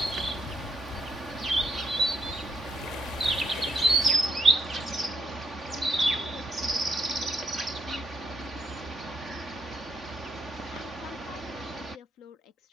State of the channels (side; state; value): both; normal; correlation 0.75